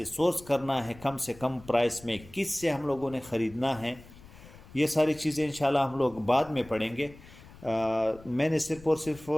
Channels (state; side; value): noise; left; rumble, 20 dB below the sound